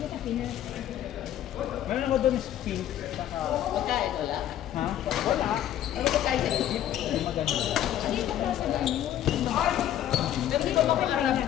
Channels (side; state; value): right; quieter; 11.6 dB